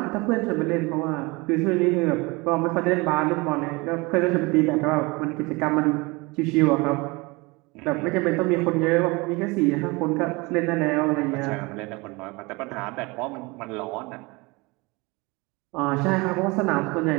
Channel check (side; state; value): left; quieter; 25.4 dB